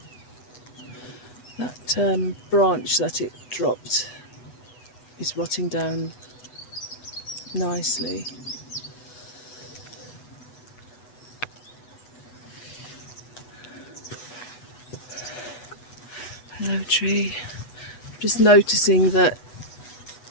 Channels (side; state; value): right; late; 8.1 ms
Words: That branch that it dropped is rotting down nicely. Hello tree. Just noticing that